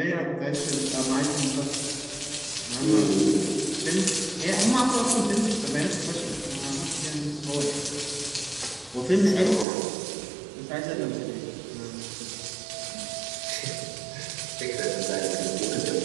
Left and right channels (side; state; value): left; drops out; at 9.7 s